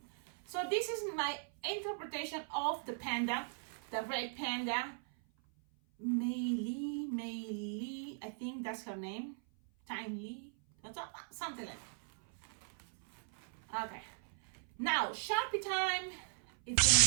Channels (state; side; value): silent; left; 52 dB below the other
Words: So this is my interpretation of the panda, the red panda. Mei, I think that's her name. Tiny, something like that. Okay. Now, Sharpie time. It's